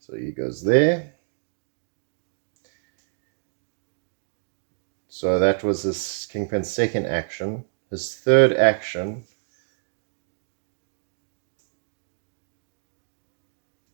So he goes there. So that was this Kingpin's second action. His third action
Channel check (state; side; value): silent; left; digital silence